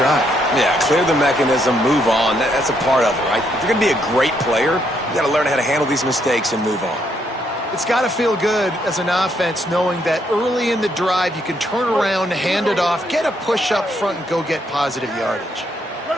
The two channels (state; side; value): normal; both; correlation 0.74